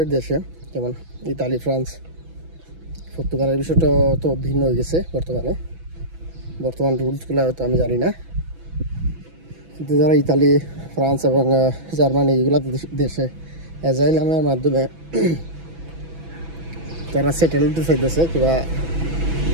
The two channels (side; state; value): left; late; 6.1 ms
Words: দেশে, যেমন ইতালি, ফ্রান্স, পর্তুগালের বিষয়টা তো ভিন্ন হয়ে গেছে বর্তমান রুলসগুলো হয়তো আমি জানি না, কিন্তু যারা ইতালি, ফ্রান্স এবং জার্মানি এগুলো দেশে অ্যাজাইলামের মাধ্যমে যারা সেটেল হতে চাইতেছে কিংবা